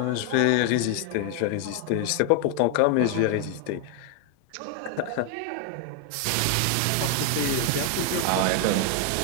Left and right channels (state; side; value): different; both; correlation 0.00